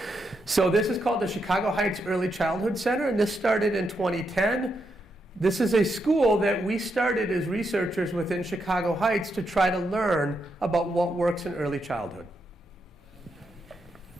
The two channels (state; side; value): normal; both; correlation 0.82